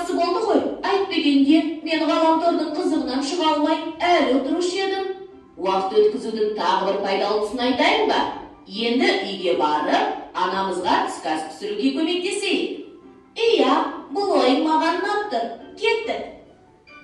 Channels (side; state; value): both; identical; correlation 1.00